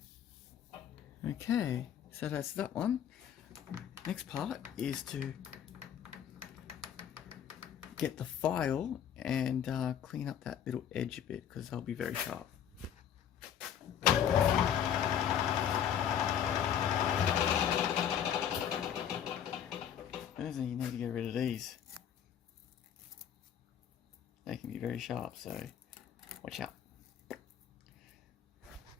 Okay, so that's that one. Next part is to get the file and clean up that little edge a bit, because they'll be very sharp. First thing, you need to get rid of these. They can be very sharp, so watch out.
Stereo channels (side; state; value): right; quieter; 9.2 dB